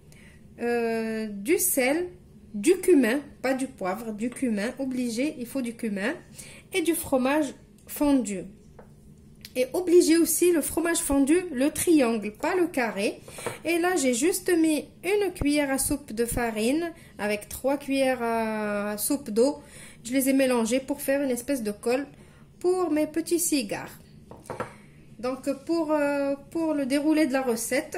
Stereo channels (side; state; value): both; identical; correlation 1.00